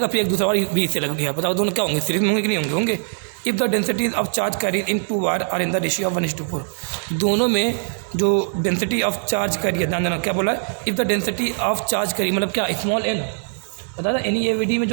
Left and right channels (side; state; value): left; silent; digital silence